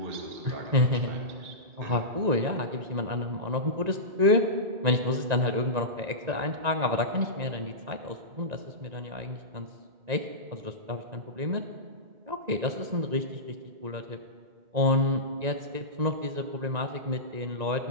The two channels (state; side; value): late; left; 1.9 ms